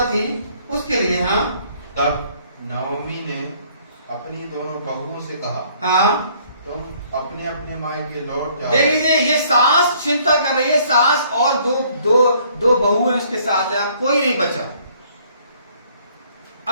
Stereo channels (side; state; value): both; inverted; correlation -0.62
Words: थी, उसके लिए। हाँ, तब नाओमी ने अपनी दोनों बहुओं से कहा, हाँ, तुम अपने अपने मायके लौट जाओ। देख लीजिए, ये सास चिंता कर रही है, सास और दो बहू है उसके साथ है, अब कोई नहीं बचा,